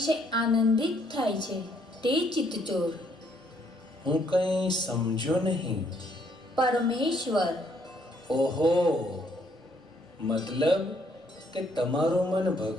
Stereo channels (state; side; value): normal; both; correlation 0.68